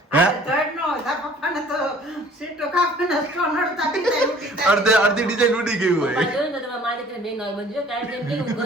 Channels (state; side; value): normal; both; correlation 0.52